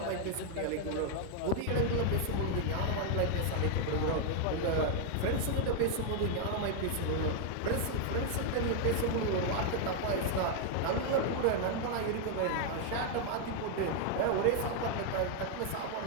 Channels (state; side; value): different; both; correlation 0.00